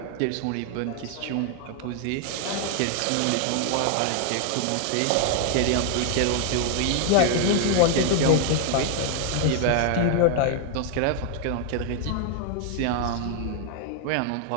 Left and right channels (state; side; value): different; both; correlation 0.00